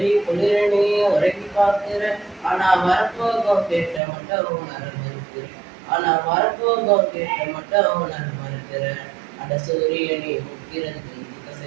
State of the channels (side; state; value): left; drops out; at 4.0 s